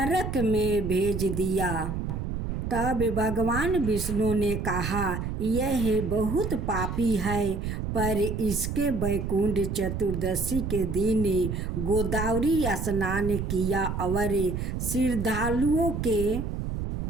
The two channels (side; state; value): right; noise; rumble, 3 dB below the sound